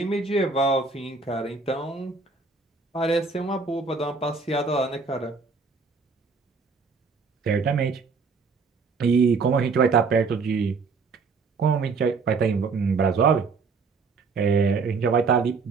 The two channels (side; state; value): left; quieter; 4.6 dB